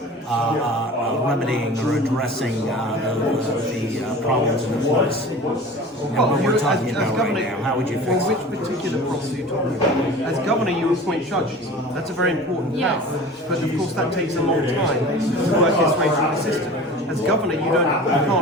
remedying or addressing the problems in the courts? What we're talking about right now, how would you fix it? Which particular problems are you talking about? As governor, you appoint judges. That's a very important Yes. power. But of course, that takes a long time to work its way through the system. As governor, you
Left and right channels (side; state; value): both; normal; correlation 0.39